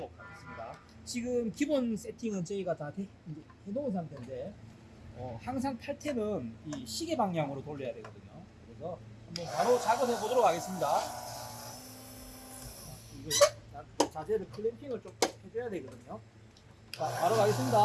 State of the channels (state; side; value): identical; both; correlation 1.00